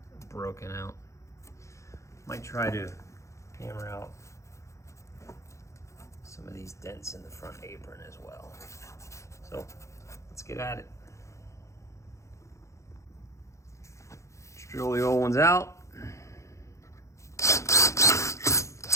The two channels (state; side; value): late; right; 0.14 ms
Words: broken out. Might try to hammer out some of these dents in the front apron as well. So let's get at it. Drill the old ones out.